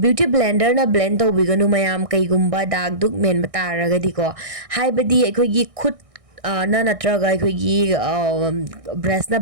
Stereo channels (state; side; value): late; left; 1.6 ms